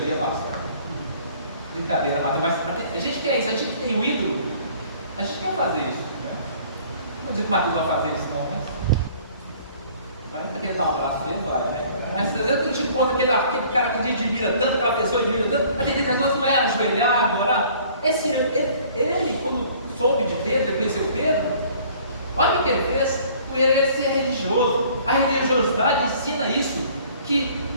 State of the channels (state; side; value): inverted; both; correlation -0.54